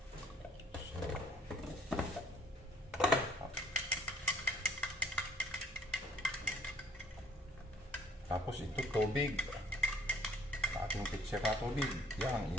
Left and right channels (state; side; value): normal; both; correlation 0.59